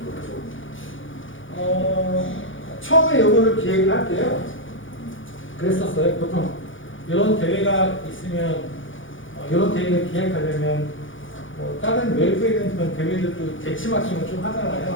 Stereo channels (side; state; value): right; late; 0.57 ms